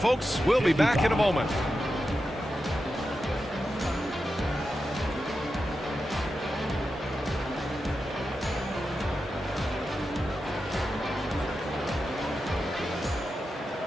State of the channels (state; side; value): normal; both; correlation 0.90